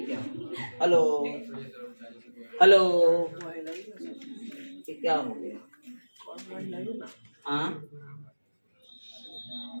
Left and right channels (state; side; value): inverted; both; correlation -1.00